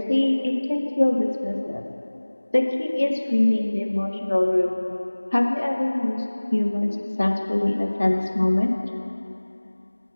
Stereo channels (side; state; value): both; inverted; correlation -1.00